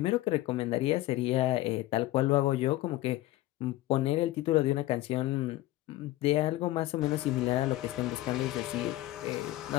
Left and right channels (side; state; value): right; quieter; 16.3 dB